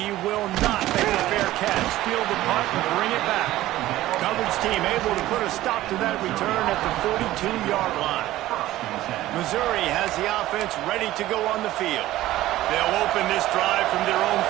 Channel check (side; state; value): left; quieter; 15.5 dB